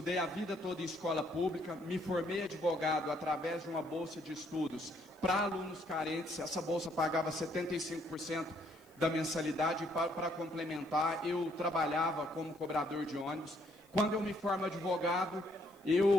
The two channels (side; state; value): left; noise; hiss, 30 dB below the sound